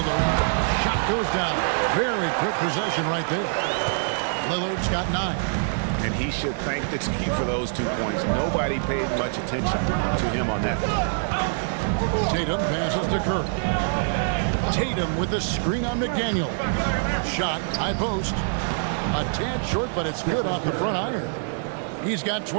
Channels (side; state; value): left; silent; 62 dB below the other